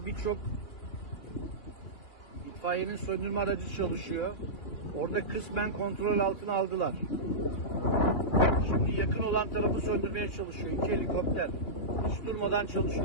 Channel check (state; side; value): late; right; 2.9 ms